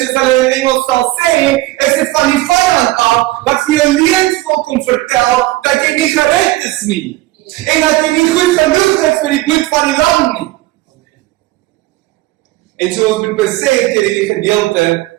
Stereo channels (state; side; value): quieter; left; 18.2 dB